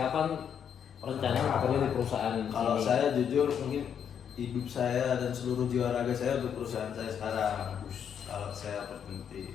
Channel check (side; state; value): right; quieter; 8.2 dB